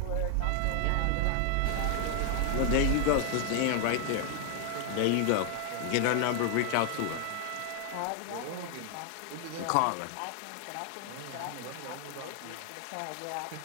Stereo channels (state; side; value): different; both; correlation 0.00